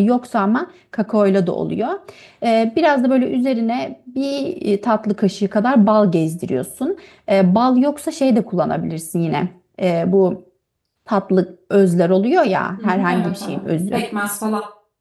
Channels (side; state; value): both; identical; correlation 1.00